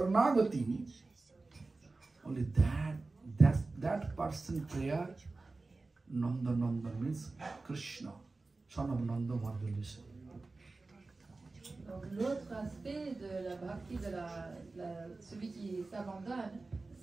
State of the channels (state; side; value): quieter; left; 3.5 dB